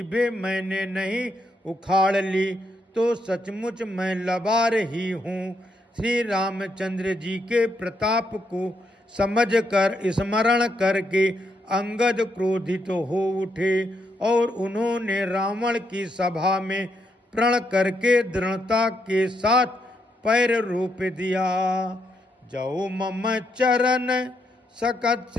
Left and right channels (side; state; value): both; normal; correlation 0.78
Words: मैंने नहीं उखाड़ ली तो सचमुच मैं लबार ही हूँ। श्री रामचंद्र जी के प्रताप को समझकर स्मरण करके अंगद क्रोधित हो उठे और उन्होंने रावण की सभा में प्रण करके दृढ़ता के साथ पैर रोप दिया। जो मम चरण